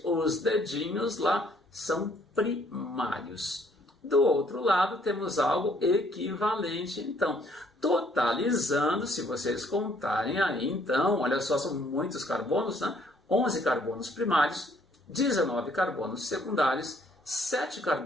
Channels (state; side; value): normal; both; correlation 0.64